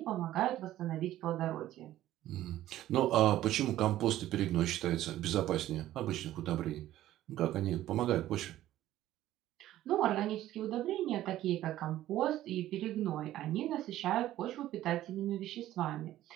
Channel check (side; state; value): left; quieter; 13.9 dB